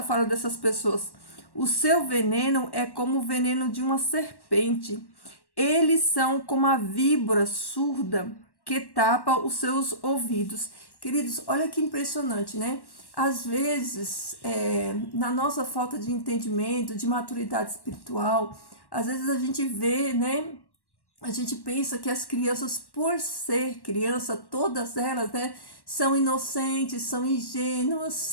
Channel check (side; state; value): right; late; 1.1 ms